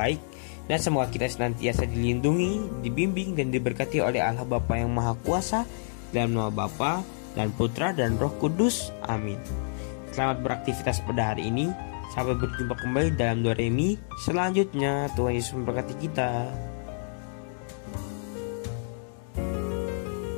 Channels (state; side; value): silent; right; digital silence